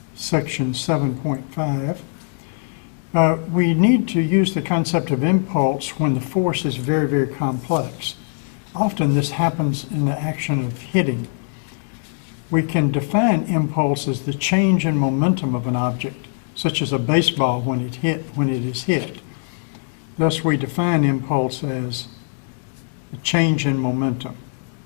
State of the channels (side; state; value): right; silent; 65 dB below the other